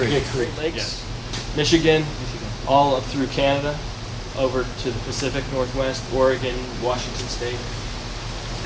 Lakes, yeah. Michigan, all up through Canada, over to the Pacific Northwest, Oregon, Washington State,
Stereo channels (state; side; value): identical; both; correlation 1.00